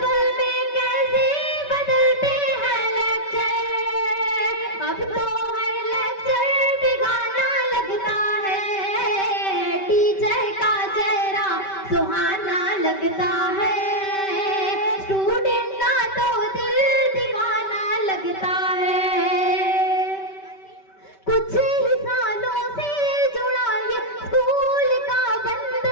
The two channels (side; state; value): right; late; 5.2 ms